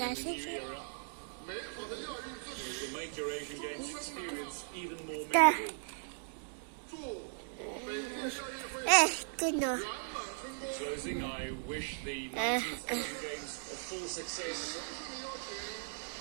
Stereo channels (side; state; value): left; silent; digital silence